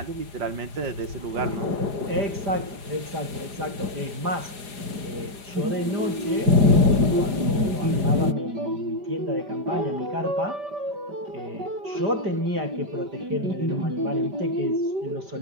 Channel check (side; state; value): left; late; 4.8 ms